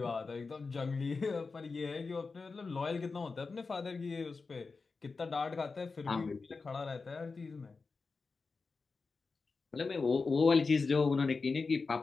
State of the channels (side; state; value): right; quieter; 4.3 dB